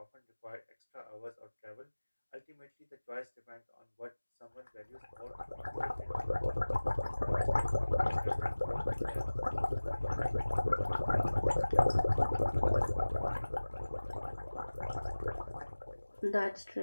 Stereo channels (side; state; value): both; inverted; correlation -1.00